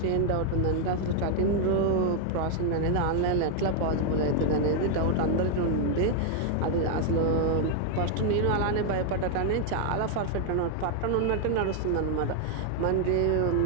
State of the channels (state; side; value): different; both; correlation 0.00